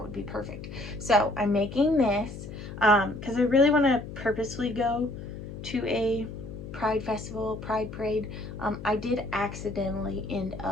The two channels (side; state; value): left; noise; hum, 10 dB below the sound